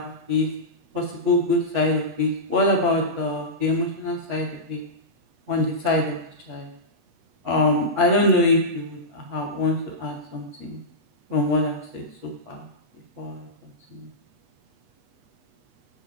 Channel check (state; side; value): late; left; 8.2 ms